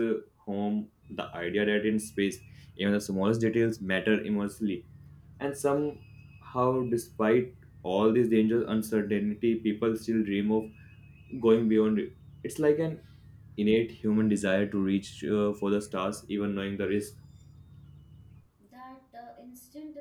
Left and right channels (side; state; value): both; identical; correlation 1.00